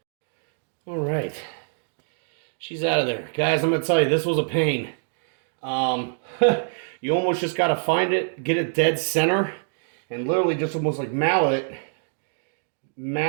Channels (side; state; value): left; silent; digital silence